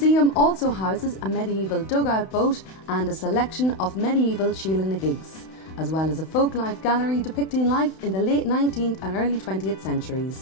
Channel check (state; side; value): late; right; 31 ms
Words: also houses a medieval dugout boat and a selection of medieval Sheela-na-gigs, as well as a folklife gallery depicting life in the late 19th and early 20th